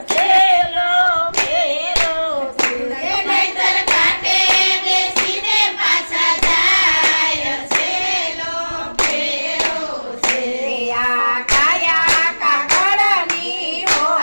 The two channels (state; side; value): inverted; both; correlation -1.00